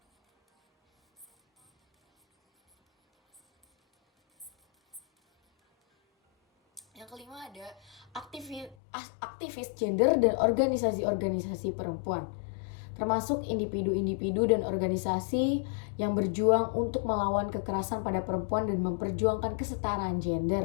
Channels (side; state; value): right; drops out; at 8.8 s